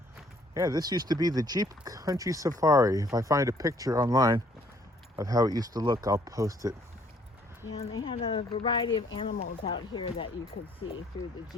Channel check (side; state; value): both; normal; correlation 0.62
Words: Yeah, this used to be the Jeep Country Safari. If I find a picture online of how it used to look, I'll post it. Yeah, and they had a variety of animals out here that you could see through the